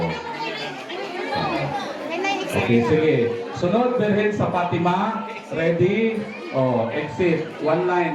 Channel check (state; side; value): identical; both; correlation 1.00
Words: Okay, sige. Sunod, Berhen sa Fatima. Ready? Oh, exit. One